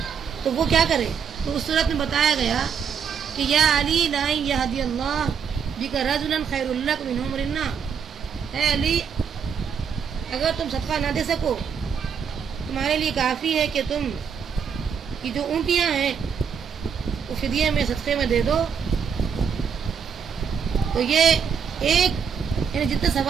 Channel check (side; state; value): left; quieter; 7.0 dB